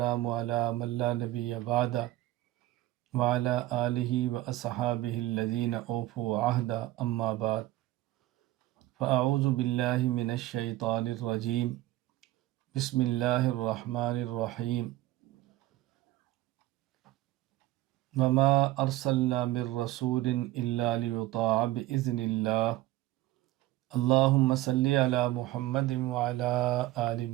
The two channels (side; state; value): left; quieter; 16.7 dB